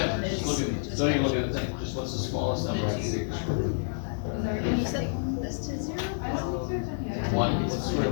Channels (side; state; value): right; silent; digital silence